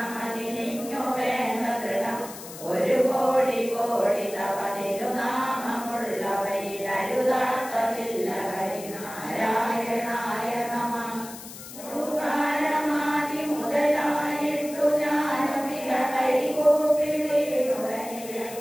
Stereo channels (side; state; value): left; noise; hiss, 14 dB below the sound